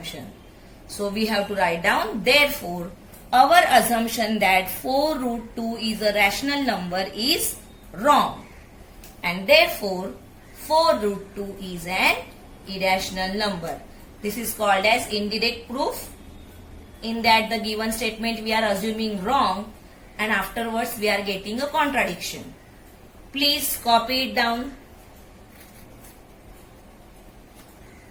So we have to write down, therefore, our assumption that 4 root 2 is a rational number is wrong. And therefore 4 root 2 is an irrational number. This is called as indirect proof. In that the given statement we are assuming wrong, and afterwards we are getting a contradiction. Please copy it down.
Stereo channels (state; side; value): identical; both; correlation 1.00